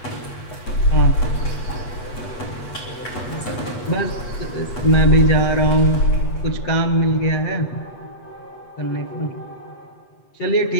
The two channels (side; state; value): right; late; 8.2 ms